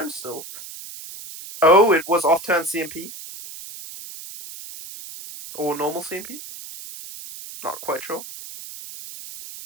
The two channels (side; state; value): right; noise; hiss, 13 dB below the sound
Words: still. Oh, it was off turn CMP or normal CMP. Not quite sure.